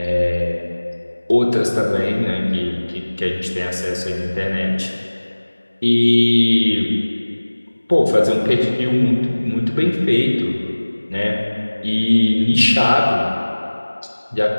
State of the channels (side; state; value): both; inverted; correlation -1.00